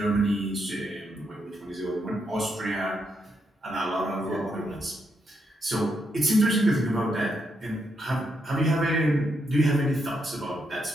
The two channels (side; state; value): both; normal; correlation 0.80